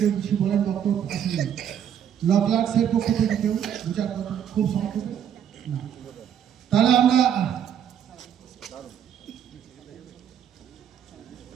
কিছু বলেন, বক্তব্য আসলে ল ক্লার্কস এর পক্ষ থেকে কেউ দু চার কথা খুব সংক্ষেপে না, তাহলে আমরা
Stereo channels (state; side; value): quieter; left; 9.1 dB